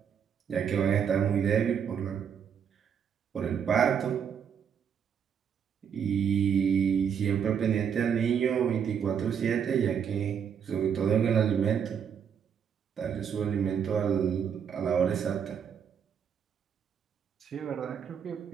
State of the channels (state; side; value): quieter; left; 7.7 dB